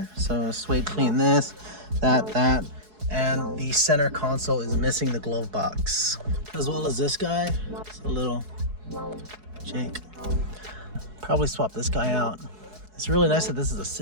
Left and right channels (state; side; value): late; left; 4.7 ms